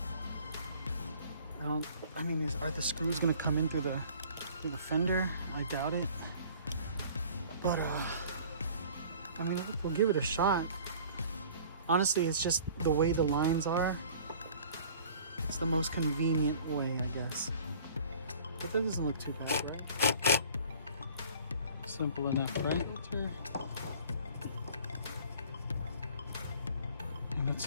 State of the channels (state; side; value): inverted; both; correlation -0.49